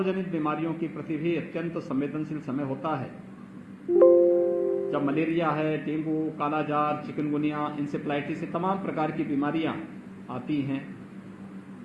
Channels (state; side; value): identical; both; correlation 1.00